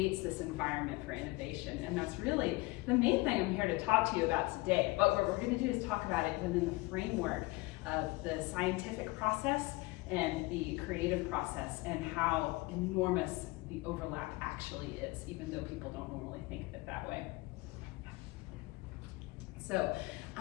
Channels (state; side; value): quieter; right; 22.4 dB